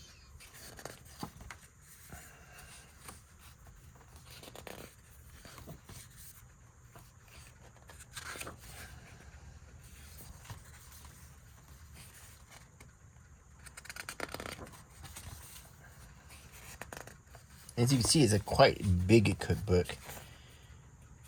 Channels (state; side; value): identical; both; correlation 1.00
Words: As you can see, it's a quite big cookbook.